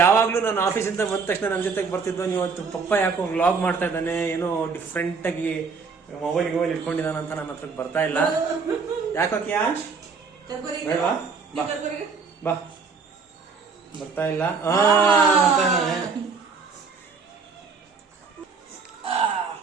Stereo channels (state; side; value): quieter; left; 5.0 dB